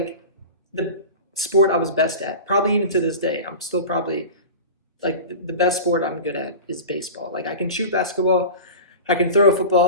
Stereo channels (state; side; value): inverted; both; correlation -0.32